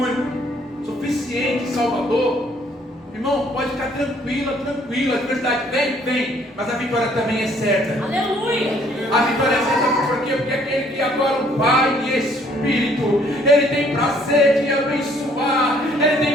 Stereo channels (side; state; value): both; normal; correlation 0.62